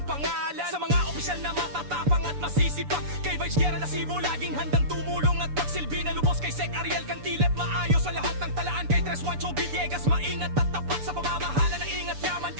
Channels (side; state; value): left; late; 6.9 ms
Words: pangalan. Sa mga opisyal na matatapang at masisipag, kay Vice Guerra Lasibo, laging handang tumulong at pagsilbi na lubos. Kay Sec Ariel Cantilep, maayos sa lahat ng talaan. Kay Tres Juancho Villegas, maingat at tapat sa pamamahala ng ingat yaman.